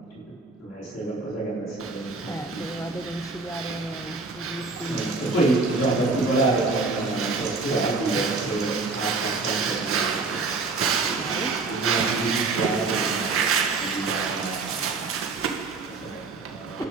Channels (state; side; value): quieter; left; 3.8 dB